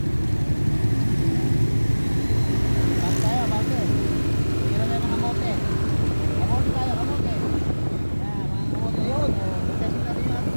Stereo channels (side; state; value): both; inverted; correlation -1.00